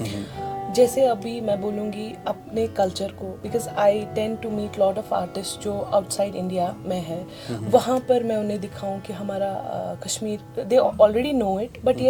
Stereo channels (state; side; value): identical; both; correlation 1.00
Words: जैसे अभी मैं बोलूँगी अपने कल्चर को, because I tend to meet lot of artist जो आउटसाइड इंडिया में है, वहाँ पर मैं उन्हें दिखाऊँ कि हमारा Kashmir, they already know it, but